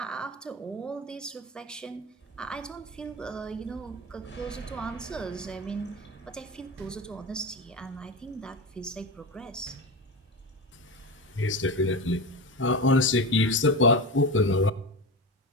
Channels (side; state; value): both; normal; correlation 0.23